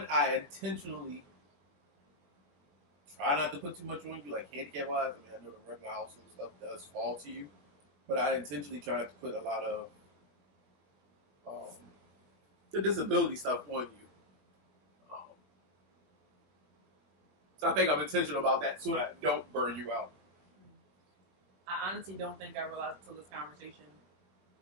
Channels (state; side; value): late; left; 20 ms